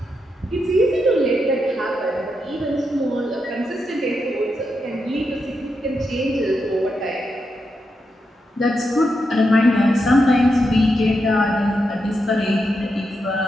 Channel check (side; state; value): both; normal; correlation 0.84